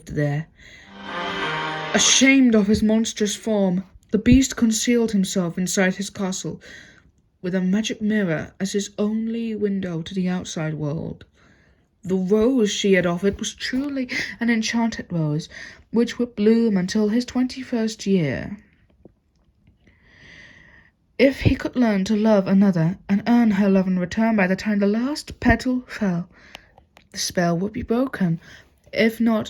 there. Ashamed of his monstrous form, the beast concealed himself inside his castle with a magic mirror as his only window to the outside world. The rose she had offered was truly an enchanted rose, which would bloom until his 21st year. If he could learn to love another and earn her love in return by the time the last petal fell, the spell would be broken. If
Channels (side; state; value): both; identical; correlation 1.00